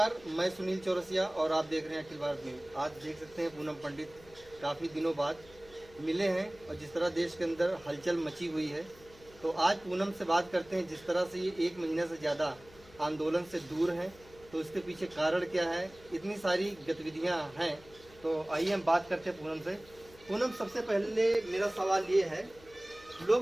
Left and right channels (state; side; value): noise; left; hum, 24 dB below the sound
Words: मैं सुनील चौरसिया और आप देख रहे हैं अखिल भारत न्यूज। आज देख सकते हैं पूनम पंडित काफ़ी दिनों बाद मिले हैं और जिस तरह देश के अंदर हलचल मची हुई है, तो आज पूनम से बात करते हैं। जिस तरह से ये 1 महीने से ज़्यादा आंदोलन से दूर हैं, तो इसके पीछे कारण क्या है, इतनी सारी गतिविधियां हैं, तो आइए हम बात करते हैं पूनम से। पूनम, सबसे पहले मेरा सवाल ये है,